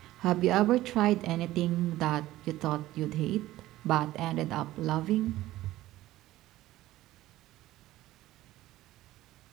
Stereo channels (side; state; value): left; quieter; 15.9 dB